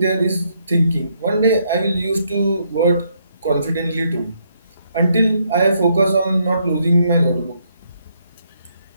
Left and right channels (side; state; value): both; inverted; correlation -0.74